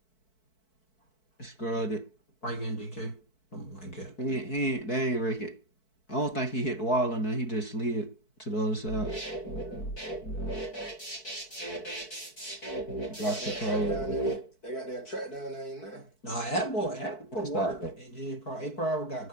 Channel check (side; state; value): right; late; 4.6 ms